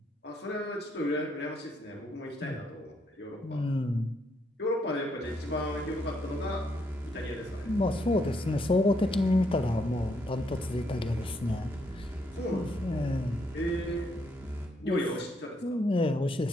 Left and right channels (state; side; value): normal; both; correlation 0.75